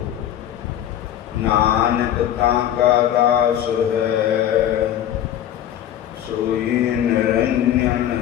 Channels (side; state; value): right; quieter; 11.0 dB